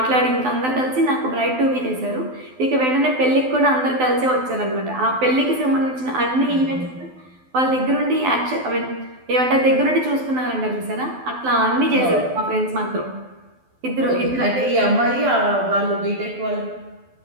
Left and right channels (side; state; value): left; late; 12 ms